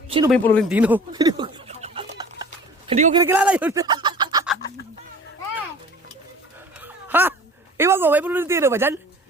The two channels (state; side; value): normal; both; correlation 0.45